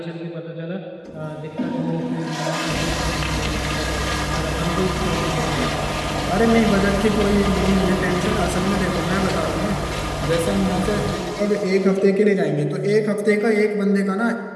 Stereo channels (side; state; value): both; identical; correlation 1.00